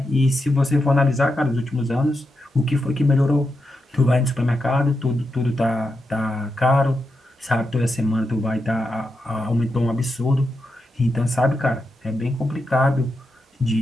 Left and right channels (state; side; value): normal; both; correlation 0.86